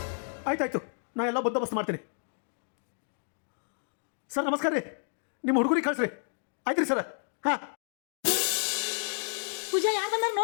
ಆಯ್ತಾಯ್ತು, ನಾ ಎಲ್ಲ ಬಂದೋಬಸ್ತ್ ಮಾಡ್ತೀನಿ. ಸರ್ ನಮಸ್ಕಾರ ರೀ, ನಿಮ್ಮ ಹುಡುಗರಿಗೆ ಕಳಿಸ್ರಿ. ಆಯ್ತು ರೀ ಸರ್. ಹಾಂ ಪೂಜಾ ಯಾರು ಬಂದಾಗ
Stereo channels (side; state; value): right; silent; 56 dB below the other